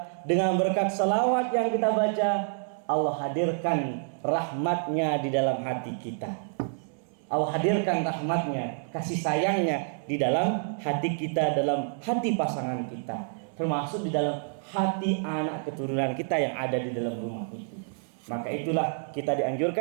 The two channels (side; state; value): left; silent; digital silence